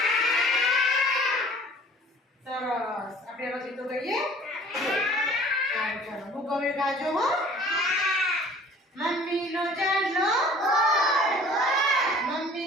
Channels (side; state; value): both; normal; correlation 0.49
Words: સરસ. આપણે પછી તો ગઈએ. ચાલો હું કવિ ગાજો હો. મમ્મીનો ચાંદલો